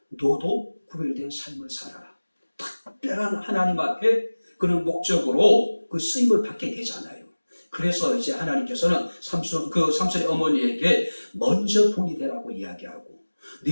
너도 구별된 삶을 살아라. 특별한 하나님 앞에 그런 목적으로 그 쓰임을 받게 되잖아요. 그래서 이제 하나님께서는 삼손의 어머니에게 먼저 본이 되라고 이야기하고,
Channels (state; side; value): inverted; both; correlation -1.00